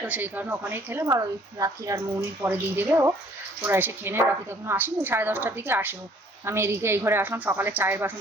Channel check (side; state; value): both; normal; correlation 0.58